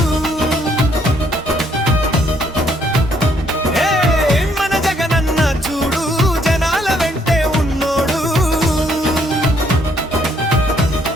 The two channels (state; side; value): normal; both; correlation 0.68